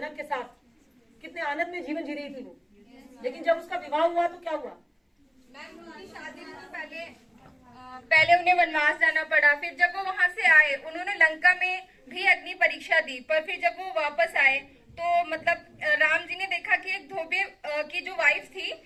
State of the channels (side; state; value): both; identical; correlation 1.00